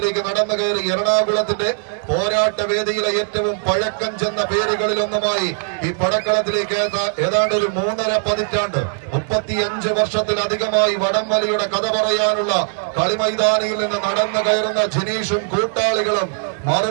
നടന്നു കയറി എറണാകുളത്തിന്റെ പോരാട്ട വേദിയിലെ ഏറ്റവും പഴക്കം ചെന്ന പേരുകളിലൊന്നുമായി ഈ പടക്കളത്തിലേക്ക് ഏതാണ്ട് ഒരു 3.5 പതിറ്റാണ്ട് 35 വർഷത്തിലധികമായി വടംവലിയുടെ കഥ പറയാനുള്ള കളിമൈതാനിയിൽ നിന്ന് നടന്നു കയറുന്ന ജിനീഷും കൂട്ടാളികളും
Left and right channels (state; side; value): silent; left; 66 dB below the other